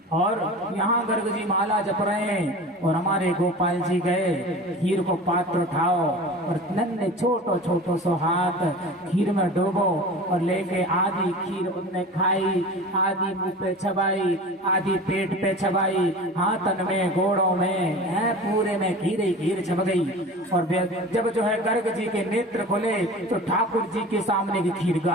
और यहाँ गर्ग जी माला जप रहे हैं और हमारे गोपाल जी गए, खीर को पात्र उठाओ और नन्हे छोटो छोटो सो हाथ खीर में डूबो और लेके आधी खीर उनने खाई, आधी मुंह पे चबाई, आधी पेट पे चबाई, हाथन में गोड़ों में है पूरे में खीर ही खीर चब गई। और जब जो है गर्ग जी के नेत्र खुले तो ठाकुर जी के सामने की खीर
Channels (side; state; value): both; normal; correlation 0.36